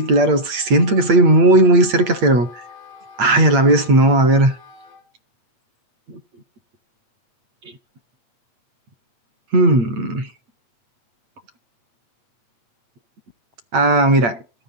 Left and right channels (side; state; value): left; late; 8.6 ms